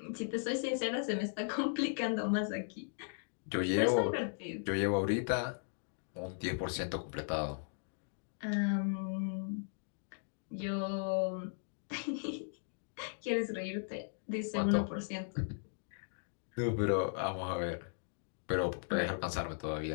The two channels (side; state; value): right; silent; digital silence